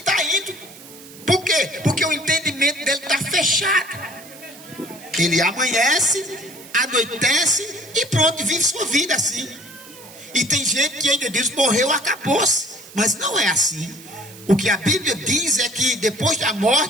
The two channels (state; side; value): noise; right; hiss, 19 dB below the sound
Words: indo. Por quê? Porque o entendimento dele está fechado. Ele amanhece, anoitece e pronto, vive sua vida assim. E tem gente que ainda diz, morreu, acabou-se. Mas não é assim. O que a Bíblia diz é que depois da